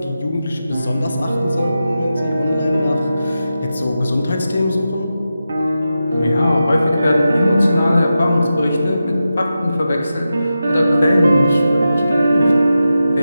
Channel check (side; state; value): both; inverted; correlation -0.90